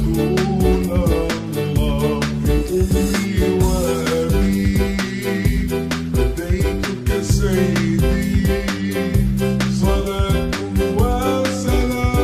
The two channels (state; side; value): identical; both; correlation 1.00